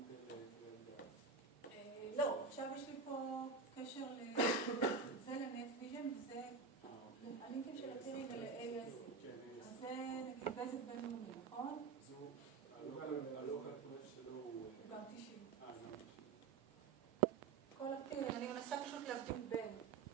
קרן גז. לא, עכשיו יש לי פה קשר זה לנטוויז'ן וזה הלינקים של הפירים ול-ASL. אז זה נגיד בזק בינלאומי, נכון? אז הוא, הלוקל פרף שלו הוא גם 90. גם 90. כל הפירים, אני מנסה פשוט להבדיל בין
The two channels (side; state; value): left; quieter; 4.9 dB